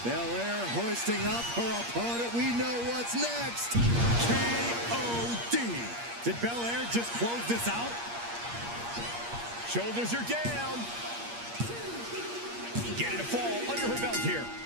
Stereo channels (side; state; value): left; late; 8.5 ms